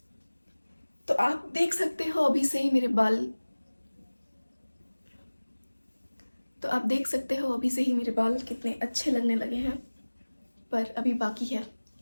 तो आप देख सकते हो अभी से ही मेरे बाल, कितने अच्छे लगने लगे हैं, पर अभी बाकी है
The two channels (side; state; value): both; inverted; correlation -1.00